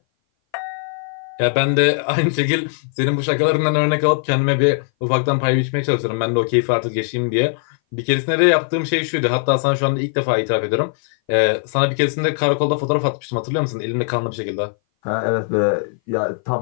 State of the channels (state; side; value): silent; right; 59 dB below the other